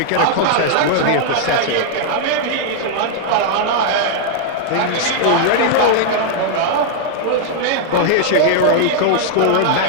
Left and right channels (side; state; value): both; different; correlation -0.01